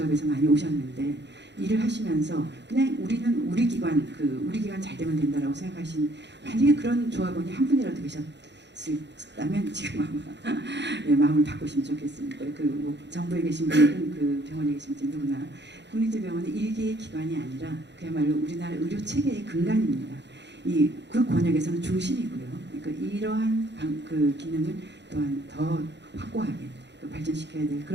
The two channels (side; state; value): left; late; 0.51 ms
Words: 많이 오셨는데 일을 하시면서 그냥 우리는 우리 기관 우리 기관 잘 되면 된다라고 생각하신 만약에 그런 조합원이 한 분이라도 계셨다면 지금 아마 예, 마음을 바꾸시면 좋겠습니다. 뭐 정부에 계신 분들은 그 병원에 계신 분들 누구나 국립대병원은 일개의 기관이 아니라 그야말로 우리나라 의료 체계의 근간입니다. 그 권역에서는 중심이고요. 그러니까 이러한 그 기능을 또한 더 확고하게 발전시켜야 될